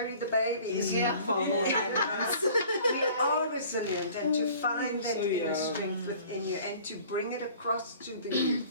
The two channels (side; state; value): both; inverted; correlation -0.49